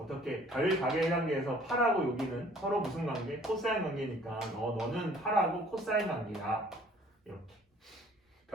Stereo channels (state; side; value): normal; both; correlation 0.55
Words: 별각의 관계에서 8하고 여기는 서로 무슨 관계? 코사인 관계니까 너는 8하고 코사인 관계야. 이렇게.